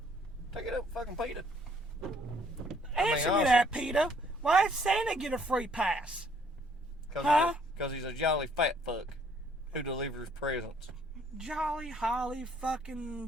Take it up, fucking PETA. Answer me honestly- that, PETA. Why does Santa get a free pass? Huh? Because he's a jolly fat fuck who delivers presents. Jolly Holly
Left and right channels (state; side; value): normal; both; correlation 0.64